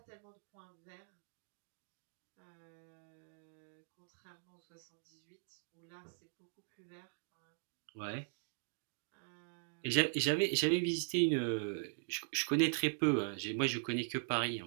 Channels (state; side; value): silent; left; digital silence